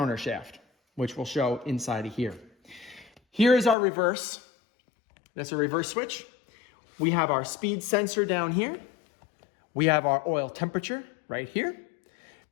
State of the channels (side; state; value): right; drops out; at 3.8 s